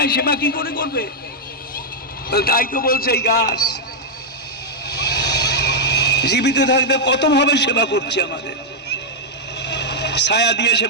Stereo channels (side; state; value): both; normal; correlation -0.04